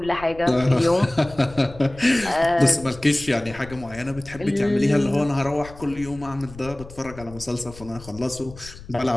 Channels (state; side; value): noise; left; rumble, 17 dB below the sound